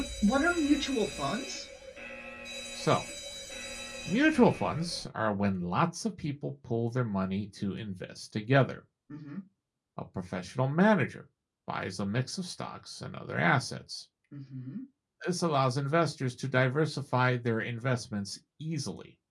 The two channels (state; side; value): identical; both; correlation 1.00